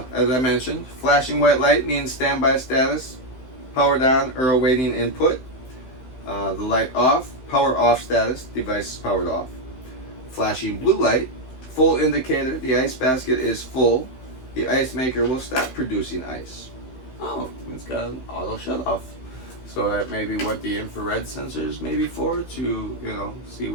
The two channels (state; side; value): late; right; 15 ms